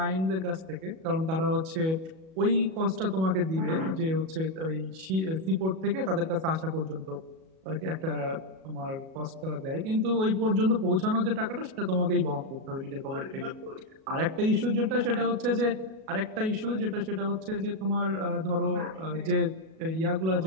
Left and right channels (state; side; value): late; left; 37 ms